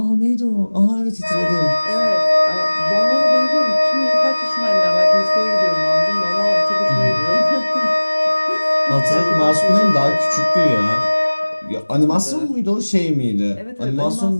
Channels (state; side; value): inverted; both; correlation -1.00